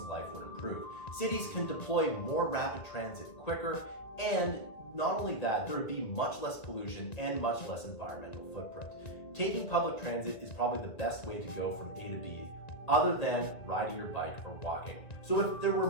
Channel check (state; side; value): late; right; 2.1 ms